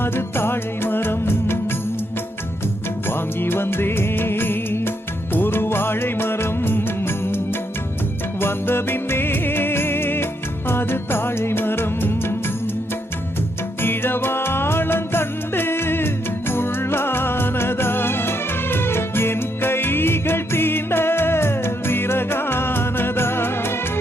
தாழை மரம் வாங்கி வந்தே ஒரு வாழை மரம் வந்த பின்னே அது தாழை மரம் இழவாளங்கண்டு உள்ளானதா என் கைகள் தீண்ட விறகானதா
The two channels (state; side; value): normal; both; correlation 0.77